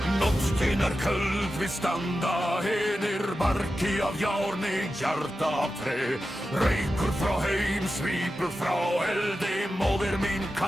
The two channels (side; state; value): both; normal; correlation 0.92